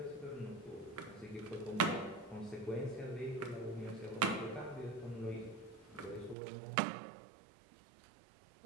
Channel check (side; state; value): left; drops out; at 6.4 s